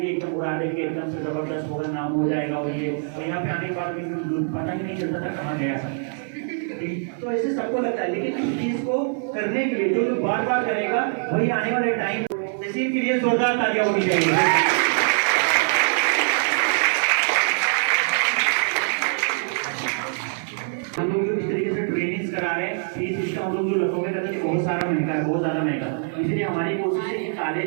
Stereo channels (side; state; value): left; silent; 63 dB below the other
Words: एकदम उड़ा देंगे, एकदम से जबरदस्त होगा, नाम हो जाएगा। और ये और यहाँ पे आने के बाद पता ही नहीं चलता था कहाँ गया। तो ऐसे सबको लगता है, लेकिन इस चीज को करने के लिए जो बार बार करेगा वही आने वाले टाइम तहसील के लिए जोरदार तालियां होनी चाहिए। हम लोग जो इस तरीके से ट्रेनिंग्स करा रहे हैं, ये सिस्टम हम लोग जो लखनऊ में करते हैं बहुत सारा महंगा है, बहुत ज्यादा महंगा, इसलिए हमारी कोशिश है कि